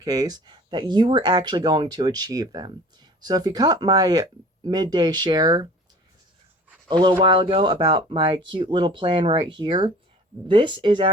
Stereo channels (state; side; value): normal; both; correlation 0.45